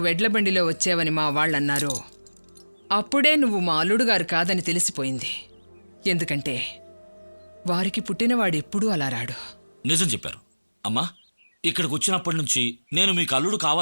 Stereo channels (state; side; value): inverted; both; correlation -1.00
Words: ఎడ్ల బండిలో వచ్చావని మా వాళ్ళన్నారో అప్పుడే నువ్వు మా అల్లుడు గారు కాదని తెలిసిపోయింది. ఎందుకంటే వారికి పుట్టినవాడు ఎప్పుడూ అలా రాడు. నిజం చెప్పారు అమ్మా. ఇక్కడికి వచ్చినప్పటి నుంచి నేను మీకు అల్లుడు